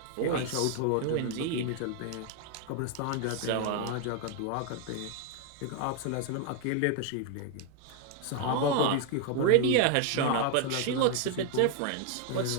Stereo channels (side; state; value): both; different; correlation 0.00